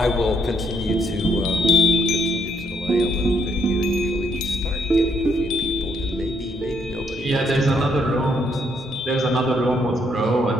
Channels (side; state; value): both; normal; correlation 0.71